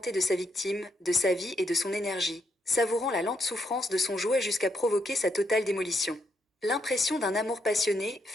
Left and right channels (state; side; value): normal; both; correlation 0.78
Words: de sa victime, de sa vie et de son énergie, savourant la lente souffrance de son jouet jusqu'à provoquer sa totale démolition. L'impression d'un amour passionné,